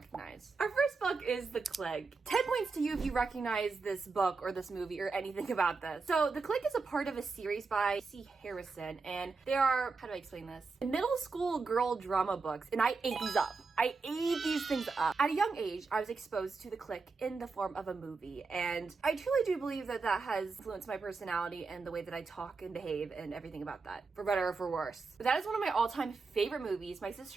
Our first book is The Clique. 10 points to you if you recognize this book or this movie or anything about this. So The Clique is a part of a series by C. Harrison, and they are, how do I explain this? Middle school girl drama books, and I ate these up. I ate these things up. At a young age, I was exposed to The Clique in the form of a movie, and I truly do believe that that has influenced my personality and the way that I talk and behave and everything about that, for better or for worse. But that is one of my all-time favorite movies. My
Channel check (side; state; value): left; quieter; 4.3 dB